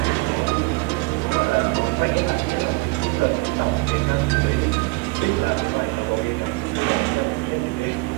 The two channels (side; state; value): left; quieter; 25.5 dB